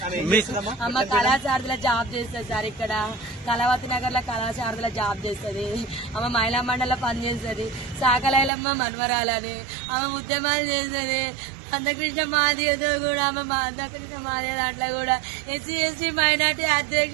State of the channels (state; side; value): drops out; left; at 8.5 s